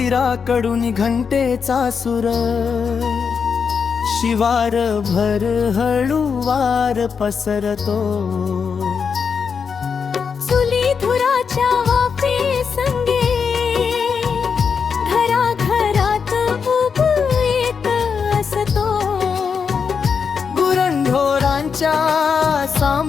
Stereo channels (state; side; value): quieter; right; 6.1 dB